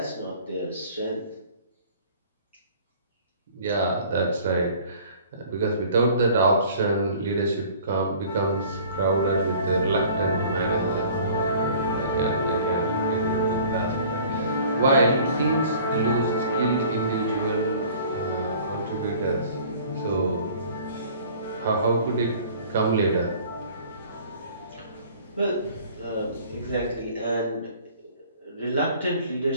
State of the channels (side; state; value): both; inverted; correlation -0.50